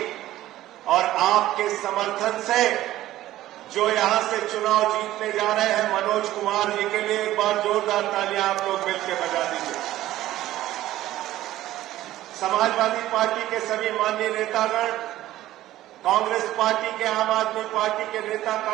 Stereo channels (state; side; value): quieter; left; 14.7 dB